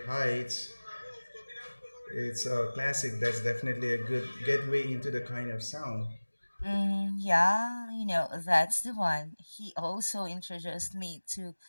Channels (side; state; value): both; inverted; correlation -1.00